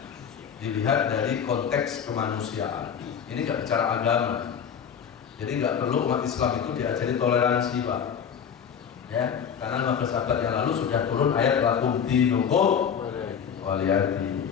dilihat dari konteks kemanusiaan. Ini nggak bicara agama. Jadi nggak perlu umat Islam itu diajari toleransi, Pak. Ya, karena 15 abad yang lalu sudah turun ayat lakum dinukum waliyati.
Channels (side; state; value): right; quieter; 7.6 dB